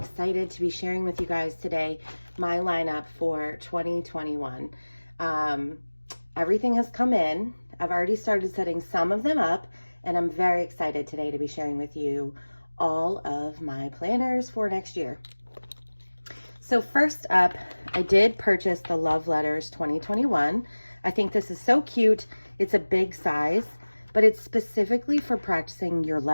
to be sharing with you guys today my lineup for 2021. Everything has come in. I've already started setting some of them up, and I'm very excited today to be sharing with you all of my planners for next year. So first up, I did purchase the Love Letters 2021. I think this is so cute. It's a big size, but it's specifically for practicing your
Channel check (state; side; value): inverted; both; correlation -1.00